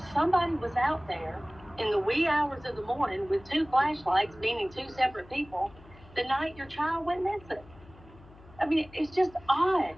somebody was out there in the wee hours of the morning with 2 flashlights, meaning 2 separate people, the night your child went missing. I mean, it's just odd.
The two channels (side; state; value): left; noise; hum, 23 dB below the sound